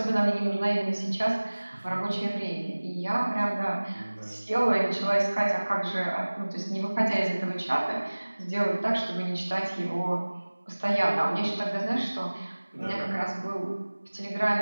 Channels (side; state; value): both; inverted; correlation -1.00